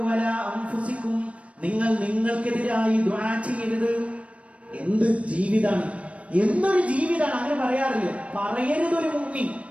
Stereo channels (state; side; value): late; left; 0.063 ms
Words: വലാ അൻഫുസികും, നിങ്ങൾ നിങ്ങൾക്കെതിരായി ദുആ ചെയ്യരുത്. എന്ത് ജീവിതാണ്, എന്തൊരു ജീവിതാണ്! അങ്ങനെ പറയാറില്ല, പറയരുത്.